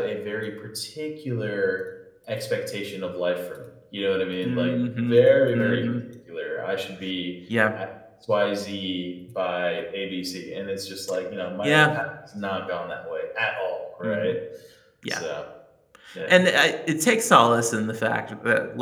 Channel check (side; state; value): both; identical; correlation 1.00